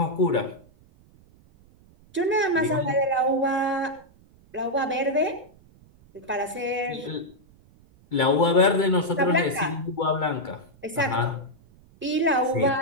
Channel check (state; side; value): noise; right; rumble, 28 dB below the sound